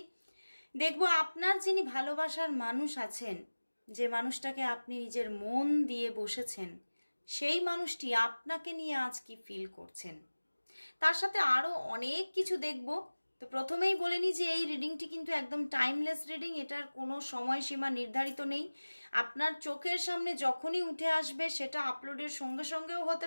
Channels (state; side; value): inverted; both; correlation -1.00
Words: দেখব আপনার যিনি ভালোবাসার মানুষ আছেন, যে মানুষটাকে আপনি নিজের মন দিয়ে বসেছেন, সেই মানুষটি আপনাকে নিয়ে আজ কি ফিল করছেন। তার সাথে আরও অনেক কিছু দেখব। তো প্রথমেই বলে নিই যে এই রিডিংটি কিন্তু একদম টাইমলেস রিডিং, এটার কোনো সময়সীমা নির্ধারিত নেই। আপনার চোখের সামনে যখনই উঠে আসবে সেটা আপলোডের সঙ্গে সঙ্গেও